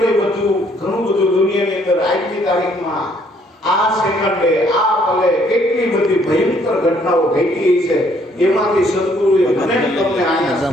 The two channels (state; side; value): normal; both; correlation 0.65